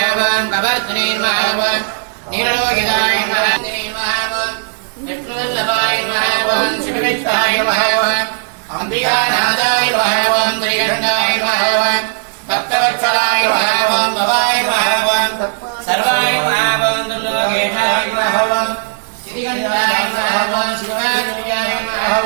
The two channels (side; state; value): left; silent; digital silence